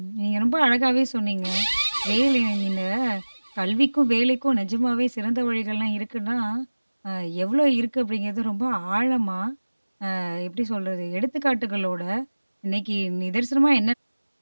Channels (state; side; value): inverted; both; correlation -1.00